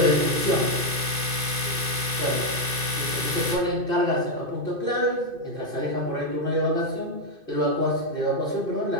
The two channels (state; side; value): late; left; 2.5 ms